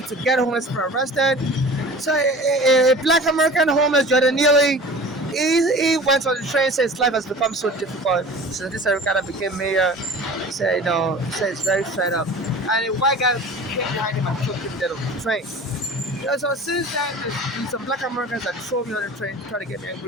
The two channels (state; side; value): normal; both; correlation 0.40